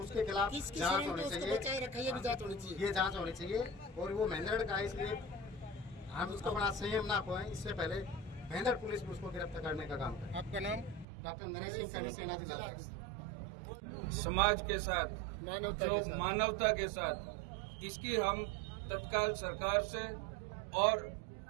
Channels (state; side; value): drops out; left; at 11.1 s